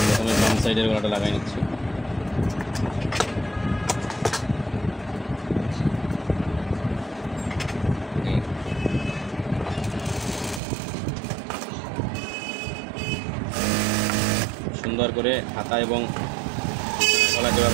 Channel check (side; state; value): left; drops out; at 10.6 s